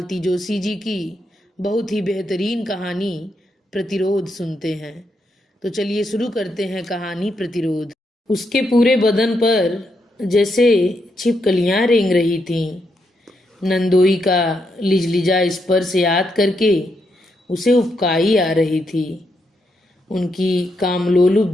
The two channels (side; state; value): both; normal; correlation 0.80